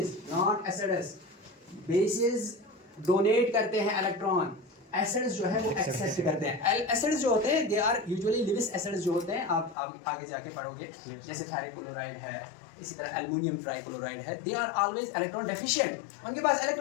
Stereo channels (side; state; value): right; drops out; at 9.8 s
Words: not acids. Bases donate करते हैं इलेक्ट्रॉन, एसिड्स जो है वो एक्सेप्ट करते हैं। एसिड्स जो होते हैं they are usually Lewis acids जो होते हैं, आप आगे जाके पढ़ोगे, जैसे फेरिक क्लोराइड है, इसी तरह एल्युमिनियम ट्राइक्लोराइड है, they are always electron deficient, उनके पास